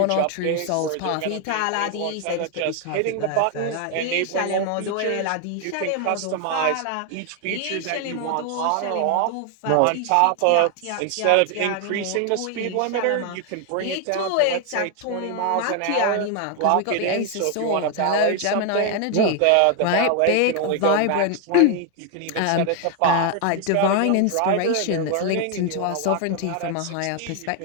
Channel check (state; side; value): different; both; correlation 0.01